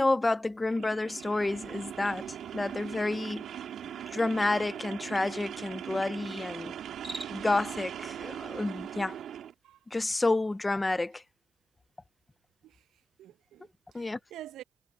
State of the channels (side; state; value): both; normal; correlation 0.95